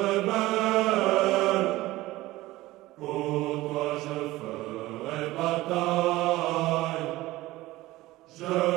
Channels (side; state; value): left; quieter; 18.0 dB